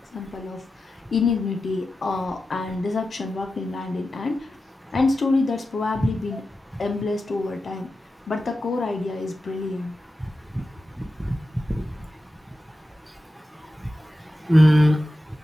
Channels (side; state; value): both; normal; correlation 0.92